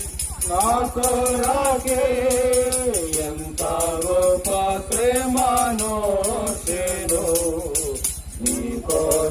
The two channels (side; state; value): both; identical; correlation 1.00